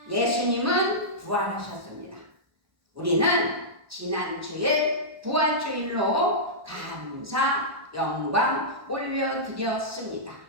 예수님은 부활하셨습니다. 우리는 지난 주일 부활주일로 감사, 영광 올려드렸습니다.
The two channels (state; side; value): late; left; 1.1 ms